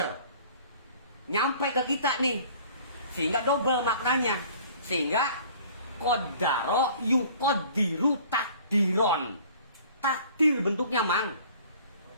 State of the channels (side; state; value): both; inverted; correlation -0.50